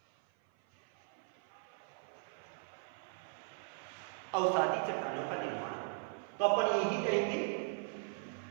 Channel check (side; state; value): left; silent; 52 dB below the other